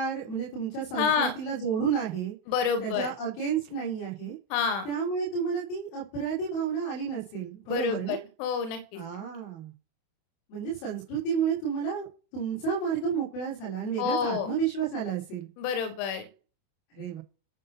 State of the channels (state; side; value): late; right; 31 ms